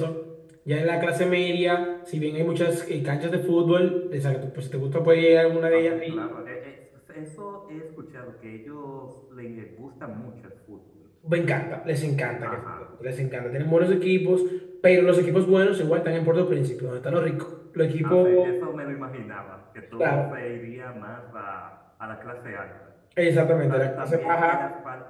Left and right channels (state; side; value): identical; both; correlation 1.00